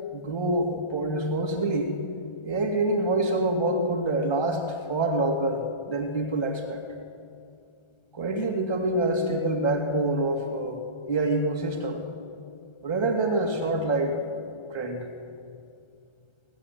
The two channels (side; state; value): right; late; 1.3 ms